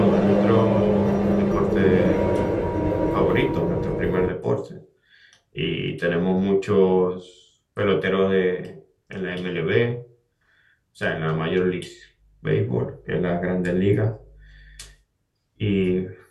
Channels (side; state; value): both; identical; correlation 1.00